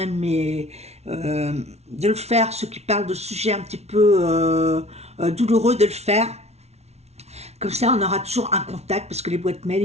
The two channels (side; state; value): left; late; 0.31 ms